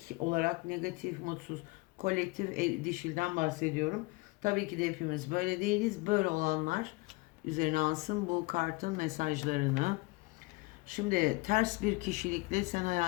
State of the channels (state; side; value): quieter; right; 24.2 dB